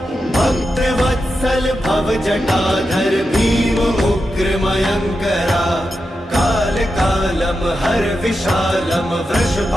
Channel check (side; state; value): both; normal; correlation 0.88